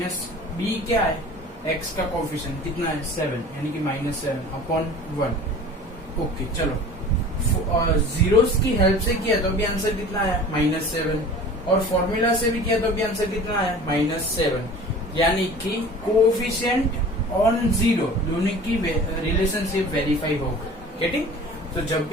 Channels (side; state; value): both; normal; correlation 0.42